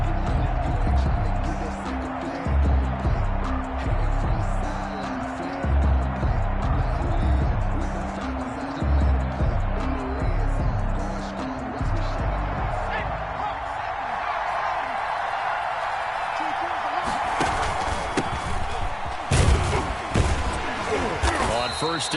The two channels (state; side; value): identical; both; correlation 1.00